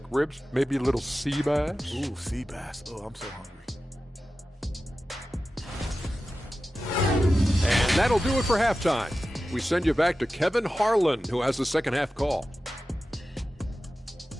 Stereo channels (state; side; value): normal; both; correlation 0.94